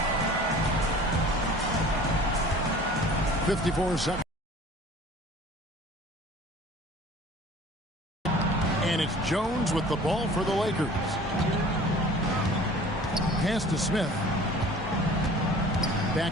54 seconds. And it's Jones with the ball for the Lakers. Pass to Smith.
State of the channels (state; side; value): normal; both; correlation 0.46